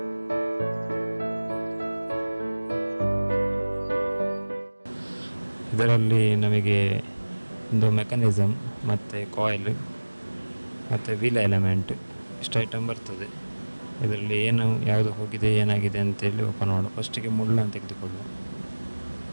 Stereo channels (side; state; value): both; inverted; correlation -1.00